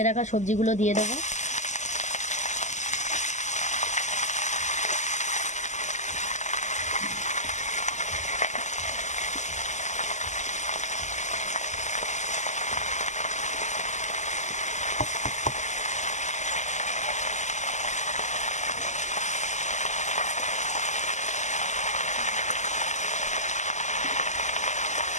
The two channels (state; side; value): late; right; 0.34 ms